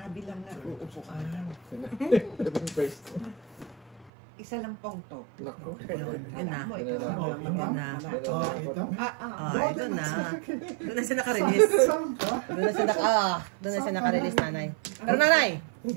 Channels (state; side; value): drops out; left; at 4.1 s